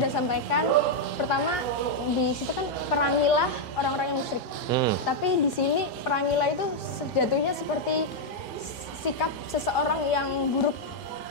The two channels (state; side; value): late; right; 2.4 ms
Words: sampaikan, pertama di situ kan perangilah orang-orang yang musyrik. Tapi di sini perangilah itu jatuhnya seperti sikap seseorang yang buruk.